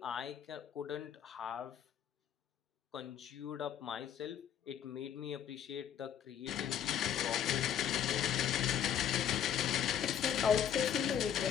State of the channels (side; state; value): right; quieter; 9.2 dB